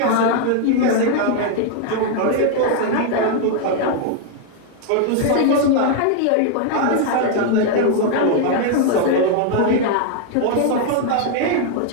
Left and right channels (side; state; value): both; different; correlation 0.00